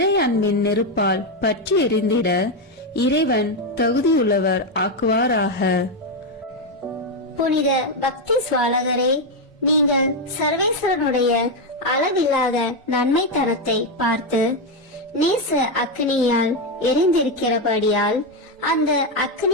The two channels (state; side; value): normal; both; correlation 0.06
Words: அன்பின் நெருப்பால் பற்றி எரிந்திட இறைவன் தகுதியுள்ளவர் ஆக்குவாராக. புனித பக்தி சுவாலகரே, நீங்கள் சர்வேஸ்வரனுடைய அளவில்லாத நன்மை தரத்தை பார்த்து நேச அக்னியால் எரிந்திருக்கிறபடியால் அந்த